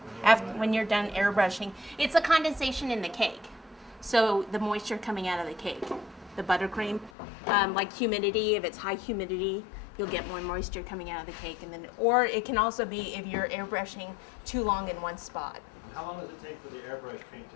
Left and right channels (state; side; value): drops out; right; at 7.1 s